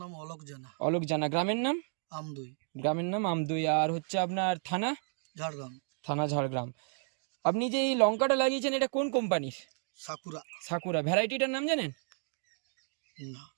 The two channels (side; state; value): left; silent; 56 dB below the other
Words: অলোক জানা। অলোক জানা। গ্রামের নাম? আমদই, গ্রামের নাম আমদই। আর হচ্ছে আপনার থানা? ঝাড়গ্রাম। থানা ঝাড়গ্রাম। আপনি যে এই লঙ্কাটা লাগিয়েছেন এটা কোন কোম্পানির? সাকুরা। সাকুরা। ভ্যারাইটিটার নাম জানেন? না।